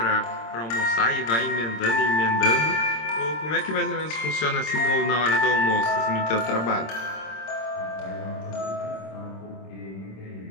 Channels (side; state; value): right; late; 26 ms